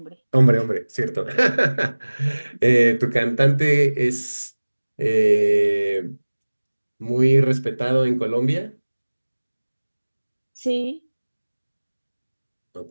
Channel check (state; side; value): inverted; both; correlation -1.00